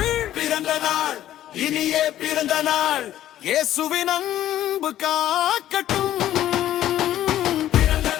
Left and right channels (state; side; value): quieter; right; 12.7 dB